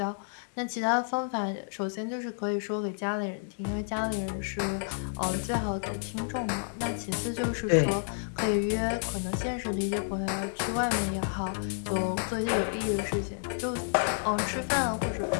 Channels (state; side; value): silent; right; digital silence